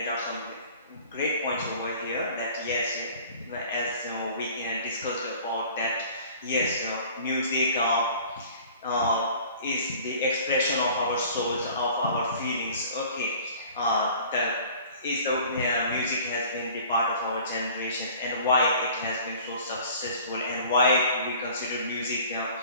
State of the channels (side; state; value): both; inverted; correlation -0.47